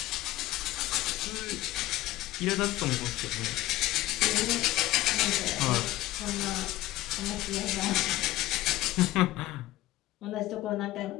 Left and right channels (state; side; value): quieter; right; 16.5 dB